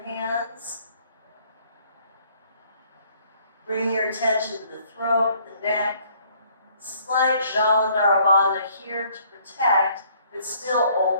hands. Bring your attention to the throat, the neck. Slight Jalandhara Bandha here to protect, but still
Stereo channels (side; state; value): both; inverted; correlation -0.62